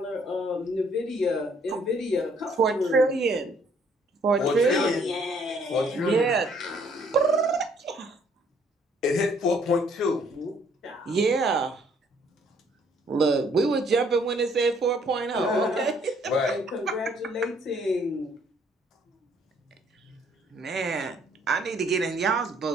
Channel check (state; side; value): normal; both; correlation 0.64